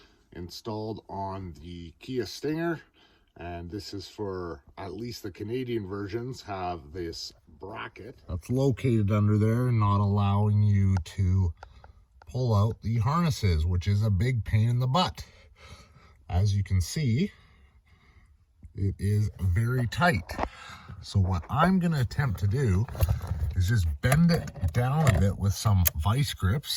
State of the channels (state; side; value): identical; both; correlation 1.00